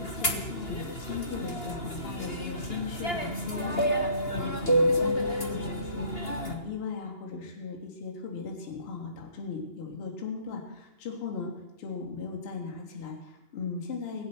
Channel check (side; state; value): right; late; 2.9 ms